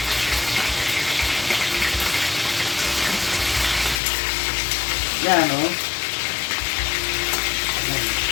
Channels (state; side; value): drops out; right; at 4.0 s